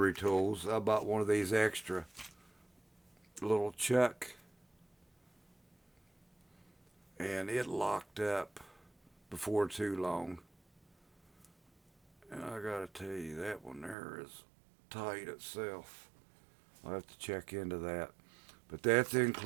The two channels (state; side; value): drops out; left; at 14.0 s